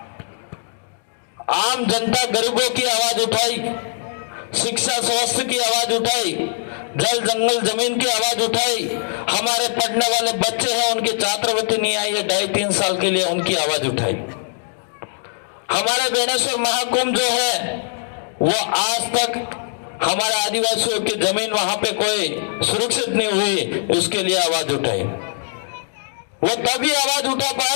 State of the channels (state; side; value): silent; right; 65 dB below the other